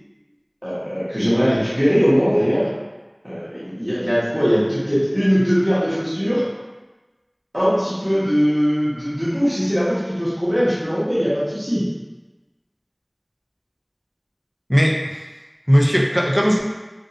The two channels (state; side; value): identical; both; correlation 1.00